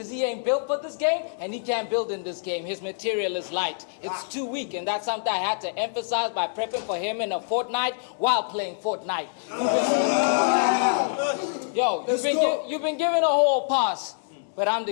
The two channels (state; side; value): silent; right; digital silence